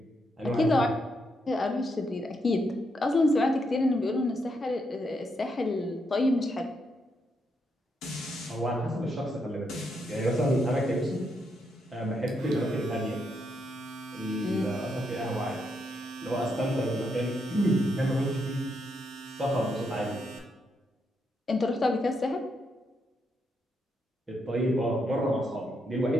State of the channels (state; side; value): normal; both; correlation 0.79